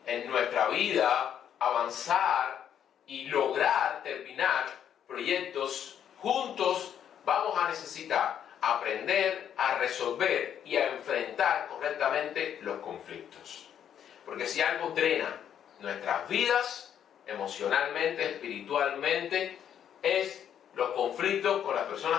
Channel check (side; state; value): right; quieter; 9.3 dB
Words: en nuestra vida, avanzar y lograr terminar proyectos juntos, vamos a necesitar aprender a resolver y a enfrentar correctamente los conflictos. Porque si algo drena nuestras vidas, emocionalmente, espiritualmente, es los conflictos con las